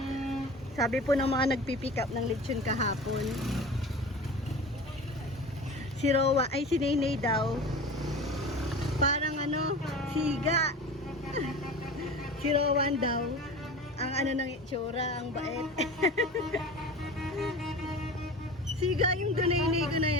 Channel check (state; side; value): normal; both; correlation 0.35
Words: Sabi po ng mga nagpipick up ng lechon kahapon. Si Rowa, ay si Nainay daw. Parang ano, siga. Si Rowan daw. Ang ano ng itsura, ang bait. Siga yung Dunayne ko na